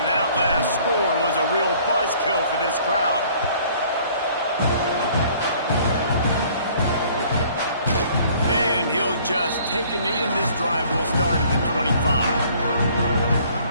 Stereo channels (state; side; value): inverted; both; correlation -0.56